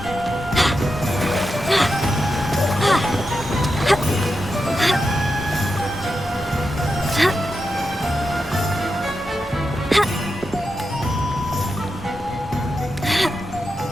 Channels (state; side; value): normal; both; correlation 0.88